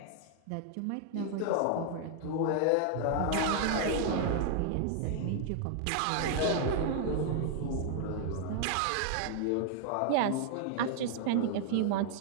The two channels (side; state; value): both; different; correlation 0.00